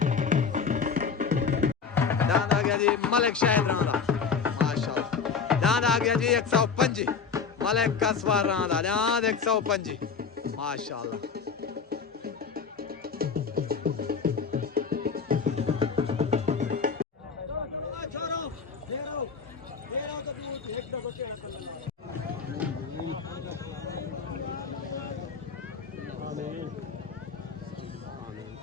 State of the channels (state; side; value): quieter; right; 5.8 dB